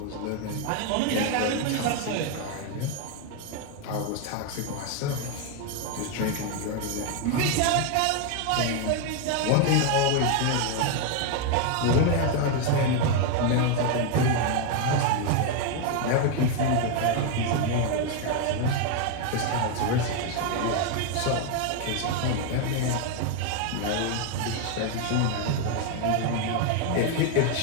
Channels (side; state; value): both; different; correlation 0.01